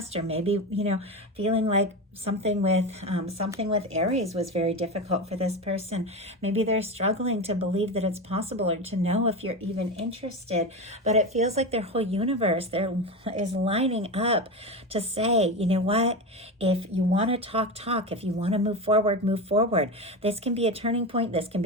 or maybe, you know, feeling like something with Aries was very difficult for this person. Maybe they're struggling to believe that it's possible or to know if you're even interested, but it feels like their whole universe there is lining up to say, you know what, if you want to talk, if you want to move forward, move forward. This can be a turning point. This can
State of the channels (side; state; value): both; normal; correlation 0.21